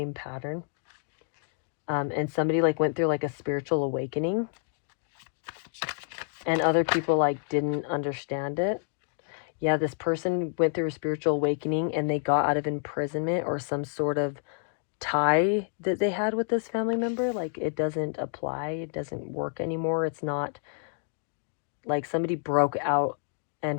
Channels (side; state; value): right; silent; digital silence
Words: pattern. And somebody like went through like a spiritual awakening, and other people like didn't understand it. Yeah, this person went through a spiritual awakening, and they got out of imprisonment or some sort of tie that they had with this family member. Like it doesn't apply, it doesn't work anymore. It's not like somebody broke out